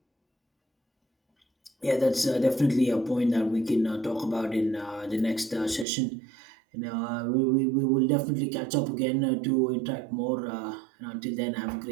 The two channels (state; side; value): drops out; left; at 5.9 s